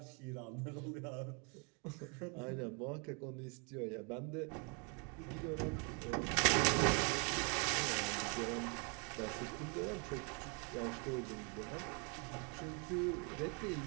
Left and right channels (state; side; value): quieter; left; 35.2 dB